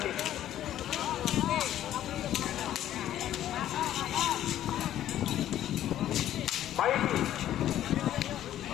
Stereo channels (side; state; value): right; quieter; 12.1 dB